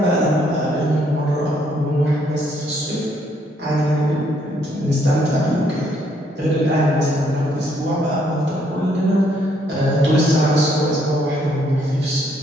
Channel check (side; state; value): both; normal; correlation 0.69